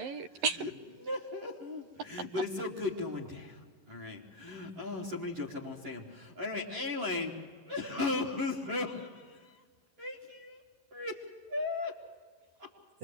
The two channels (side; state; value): left; late; 11 ms